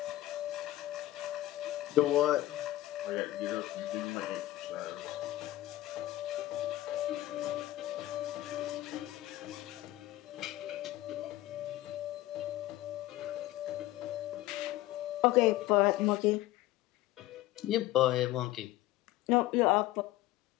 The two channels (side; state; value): right; quieter; 16.1 dB